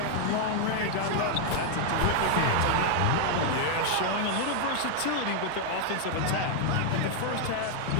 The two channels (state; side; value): different; both; correlation 0.00